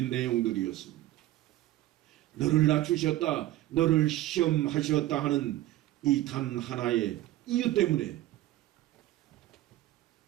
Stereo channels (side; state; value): left; quieter; 15.3 dB